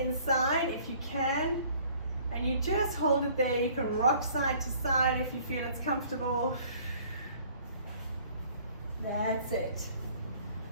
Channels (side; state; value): both; inverted; correlation -0.55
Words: if you can, and you just hold it there. You can rock side to side if you feel it's comfortable. That's it.